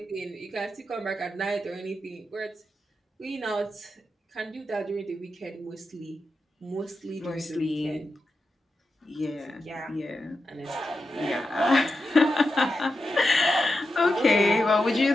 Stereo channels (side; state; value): both; normal; correlation 0.89